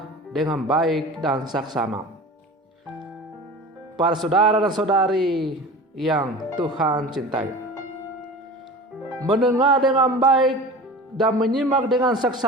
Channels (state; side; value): normal; both; correlation 0.36